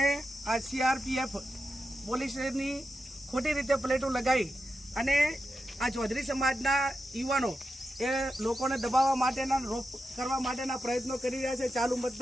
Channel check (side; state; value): both; normal; correlation 0.89